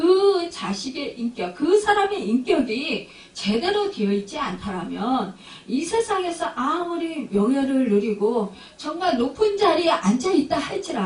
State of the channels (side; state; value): both; identical; correlation 1.00